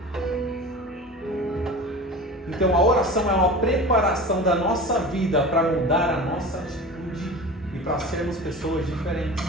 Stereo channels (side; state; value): both; normal; correlation 0.34